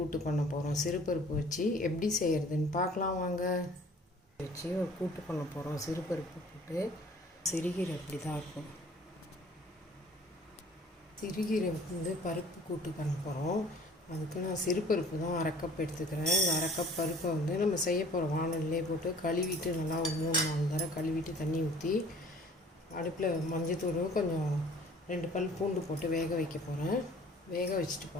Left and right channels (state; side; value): normal; both; correlation 0.52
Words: பண்ண போகிறோம். சிறுபருப்பு வச்சு எப்படி செய்கிறதுன்னு பார்க்கலாம் வாங்க. வச்சு ஒரு கூட்டு பண்ண போகிறோம். சிறுபருப்பு கூட்டு. சிறுகீரை இப்படி தான் இருக்கும். சிறுகீரை பருப்பு கூட்டு பண்ண போகிறோம். அதுக்கு நான் சிறுபருப்பு தான் 1/2 கப் எடுத்துக்கிறேன். இந்த 1/2 கப் பருப்பை நம்ம செய்ய போகிற வானல்லே போட்டு கழுவிட்டு நல்லா ஒரு 3-4 தடவை கழுவிட்டு தண்ணி ஊற்றி அடுப்பில் மஞ்சத்தூள் கொஞ்சம் 2 பல் பூண்டு போட்டு வேக வைக்க போகிறேன். வேக வச்சுட்டு